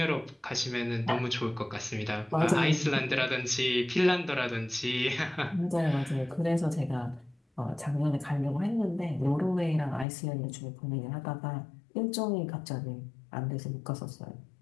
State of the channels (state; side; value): drops out; right; at 10.1 s